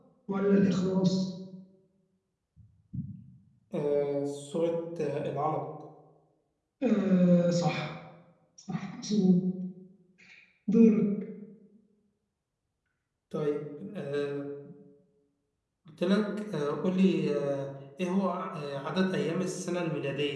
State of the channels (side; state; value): both; identical; correlation 1.00